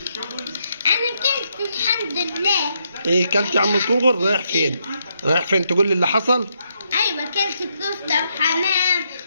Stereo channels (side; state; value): both; inverted; correlation -0.78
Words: انا كلت الحمد لله. ايه كلت يا عم الكونغر؟ رايح فين؟ رايح فين؟ تقول لي اللي حصل؟ ايوه كلت كفته وحمام